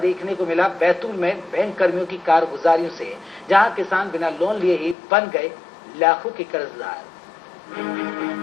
को मिला बैतूल में बैंक कर्मियों की कारगुजारियों से, जहां किसान बिना लोन लिए ही बन गए लाखों के कर्जदार।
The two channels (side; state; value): right; drops out; at 5.0 s